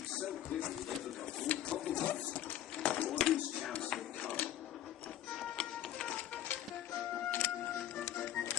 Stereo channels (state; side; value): quieter; right; 12.1 dB